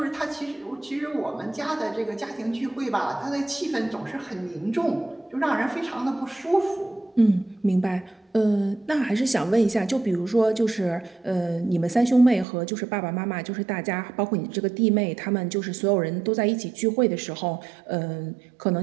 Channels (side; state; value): left; drops out; at 12.5 s